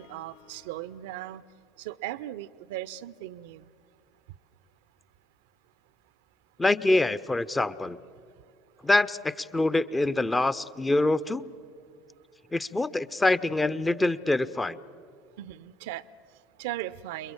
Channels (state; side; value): normal; both; correlation 0.90